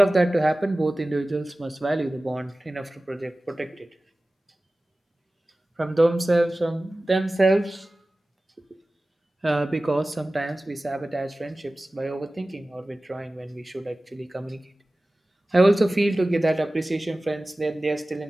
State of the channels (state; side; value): normal; both; correlation 0.97